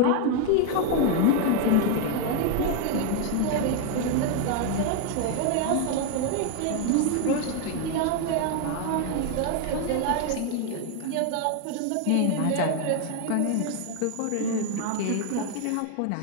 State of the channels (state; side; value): different; both; correlation 0.01